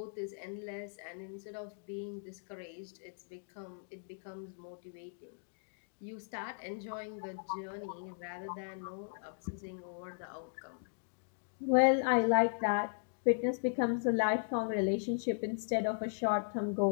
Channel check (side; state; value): right; silent; digital silence